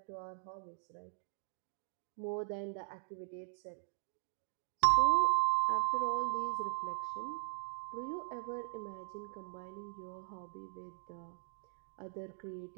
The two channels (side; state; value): left; silent; digital silence